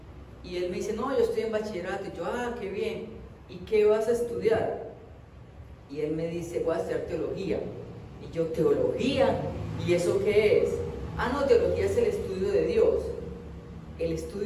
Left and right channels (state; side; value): identical; both; correlation 1.00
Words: Y él me dice: no, yo estoy en bachillerato. Y yo: ah, qué bien. ¿Y qué vas a estudiar? Y él me dice: voy a estudiar teología. Y yo: ¿teología? ¿Y eso qué es? Ah, no, teología es el estudio de Dios. El